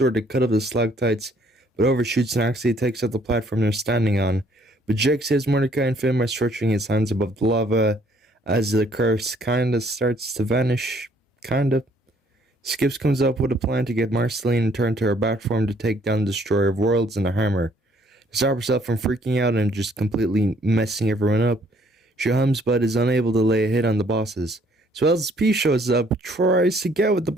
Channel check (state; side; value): normal; both; correlation 0.63